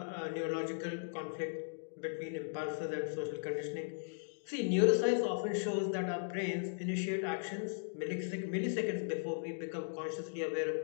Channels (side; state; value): right; silent; digital silence